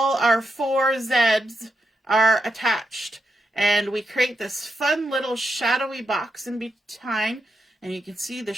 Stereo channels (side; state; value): both; normal; correlation 0.85